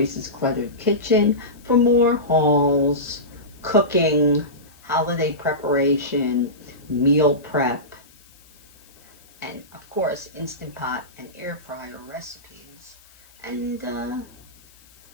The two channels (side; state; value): left; noise; hiss, 27 dB below the sound